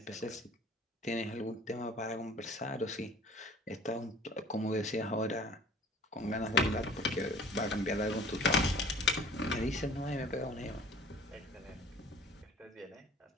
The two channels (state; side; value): normal; both; correlation 0.47